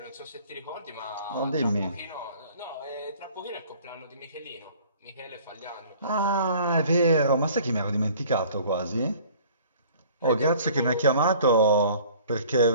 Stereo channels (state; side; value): inverted; both; correlation -0.51